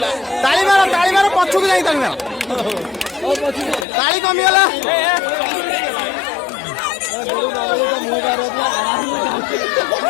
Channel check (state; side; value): drops out; right; at 3.9 s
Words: ताली मारो पछुक जाई ताली मारो ताली कमिगला